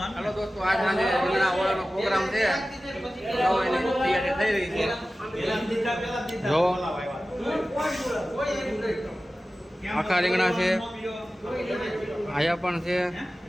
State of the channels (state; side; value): normal; both; correlation 0.95